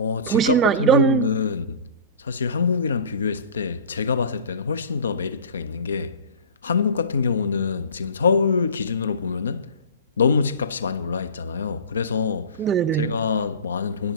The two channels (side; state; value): both; inverted; correlation -0.35